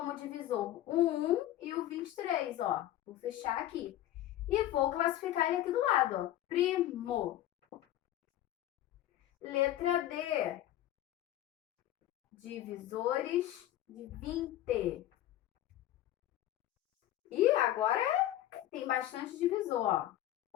divisor o 1 e o 23, ó. Vou fechar aqui. E vou classificar ele aqui do lado, ó. Primo. Letra D. Divisores de 20. E agora tem bastante divisor, ó.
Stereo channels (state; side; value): quieter; right; 13.6 dB